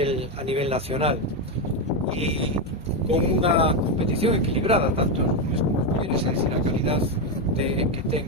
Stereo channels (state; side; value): normal; both; correlation 0.08